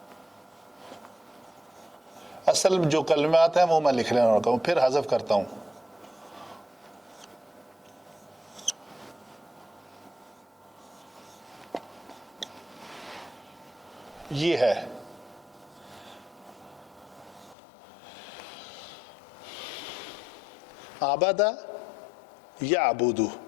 اصل جو کلمات ہیں وہ میں لکھ لینا ہوتا ہوں، پھر حذف کرتا ہوں. یہ ہے عبادہ یعبدو.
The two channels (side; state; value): right; drops out; at 17.6 s